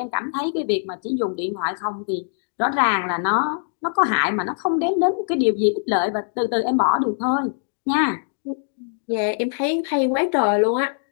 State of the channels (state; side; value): silent; right; digital silence